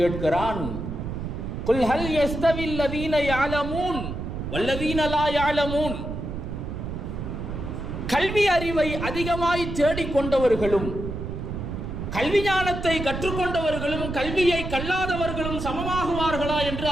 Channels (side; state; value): right; noise; rumble, 6 dB below the sound